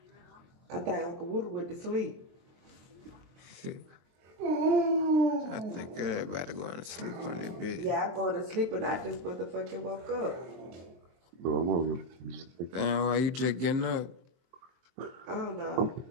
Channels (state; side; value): late; left; 23 ms